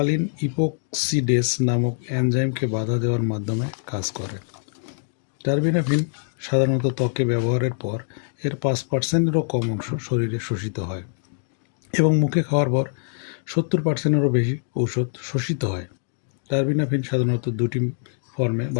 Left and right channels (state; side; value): silent; right; digital silence